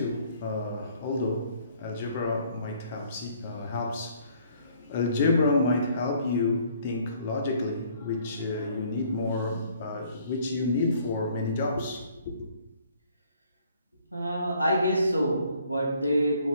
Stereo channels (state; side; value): inverted; both; correlation -0.61